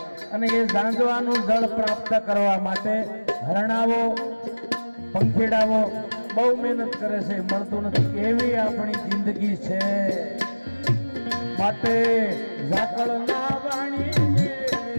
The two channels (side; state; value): both; inverted; correlation -1.00